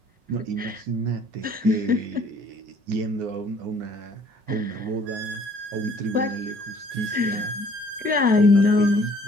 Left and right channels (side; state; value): left; late; 5.4 ms